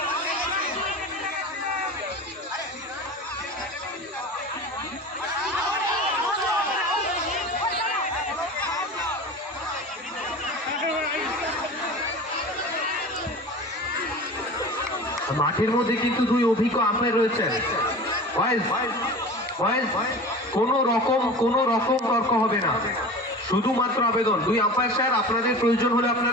মাঠের মধ্যে কিন্তু 2 অভিজ্ঞ আম্পায়ার রয়েছেন। কোন রকম তর্ক হবে না, শুধুমাত্র আবেদন 2 আম্পায়ার স্যার, আপনাদের প্রয়োজন হলে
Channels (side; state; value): both; normal; correlation 0.35